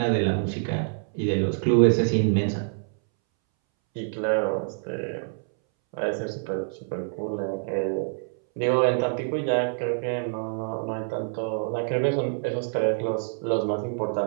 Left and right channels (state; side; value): silent; left; 61 dB below the other